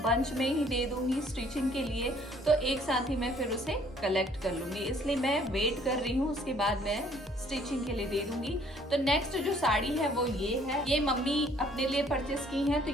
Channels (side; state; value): both; normal; correlation 0.60